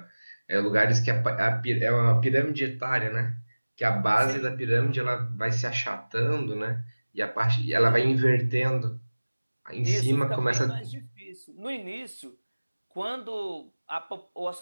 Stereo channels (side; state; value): both; inverted; correlation -1.00